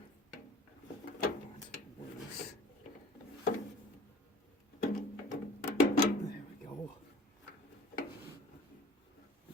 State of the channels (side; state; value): both; normal; correlation 0.48